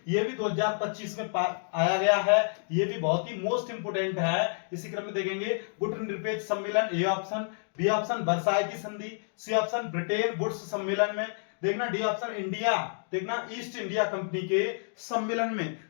ये भी 2025 में आया गया है, ये भी बहुत ही मोस्ट इंपोर्टेंट है। इसी क्रम में देखेंगे गुटनिरपेक्ष सम्मेलन, A option, B option Versailles की संधि, सी ऑप्शन ब्रिटेन वुड्स सम्मेलन में, देखना डी ऑप्शन इंडिया, देखना ईस्ट इंडिया कंपनी के सम्मेलन में।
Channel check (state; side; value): silent; right; digital silence